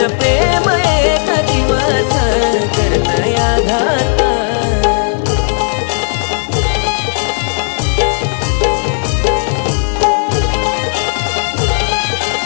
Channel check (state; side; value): silent; right; digital silence